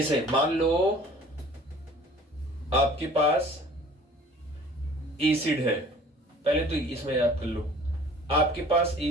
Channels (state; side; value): normal; both; correlation 0.49